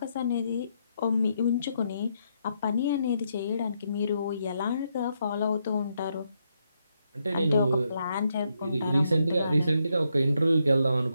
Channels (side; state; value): both; inverted; correlation -0.79